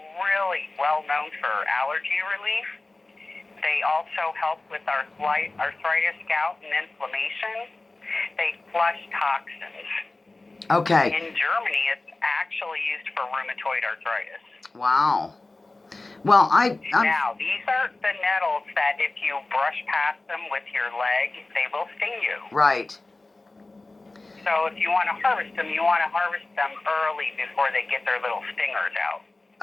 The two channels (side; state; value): right; quieter; 3.2 dB